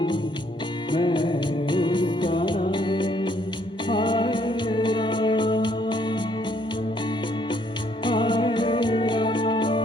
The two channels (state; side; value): normal; both; correlation 0.67